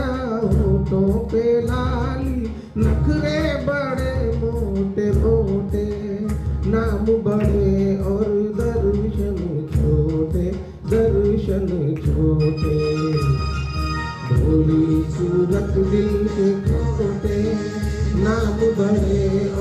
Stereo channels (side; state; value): both; identical; correlation 1.00